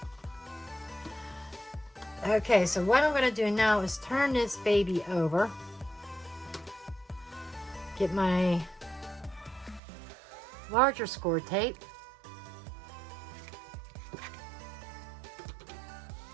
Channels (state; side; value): drops out; left; at 9.8 s